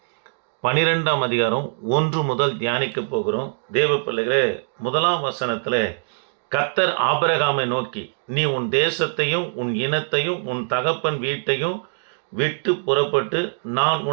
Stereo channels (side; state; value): left; silent; digital silence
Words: 12ஆம் அதிகாரம் 1 முதல் தியானிக்க போகிறோம். தேவ பிள்ளைகளே, 1ஆம் வசனத்தில் கர்த்தர் ஆபிரகாமை நோக்கி, நீ உன் தேசத்தையும் உன் இனத்தையும் உன் தகப்பன் வீட்டையும் விட்டு புறப்பட்டு நான்